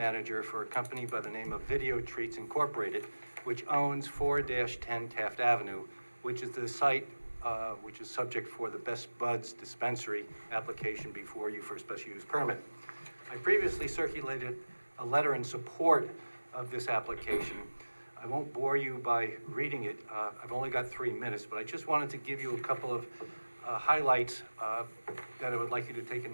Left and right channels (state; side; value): inverted; both; correlation -1.00